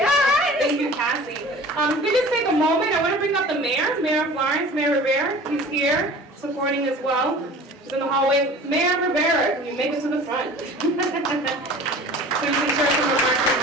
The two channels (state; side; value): normal; both; correlation 0.42